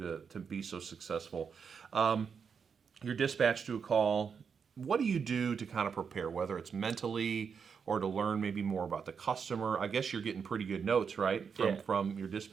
to be so successful. You're dispatched to a call. What do you do to kind of prepare, whether it's mentally or to learn maybe more about the customer? I guess you're getting pretty good notes, right, from your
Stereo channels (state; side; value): quieter; left; 6.3 dB